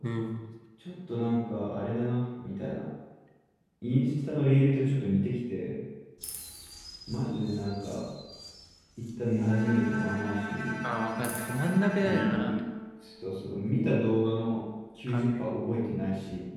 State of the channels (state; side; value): identical; both; correlation 1.00